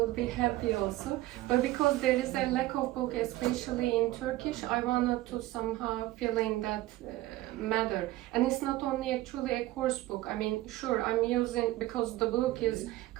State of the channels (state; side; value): quieter; left; 16.8 dB